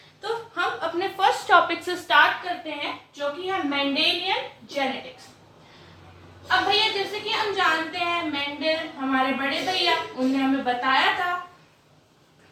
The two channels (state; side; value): identical; both; correlation 1.00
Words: तो हम अपने फर्स्ट टॉपिक से स्टार्ट करते हैं जो कि है मेंडेलियन जेनेटिक्स। अब भैया जैसे कि हम जानते हैं मेंडल हमारे बड़े भैया, उन्होंने हमें बताया था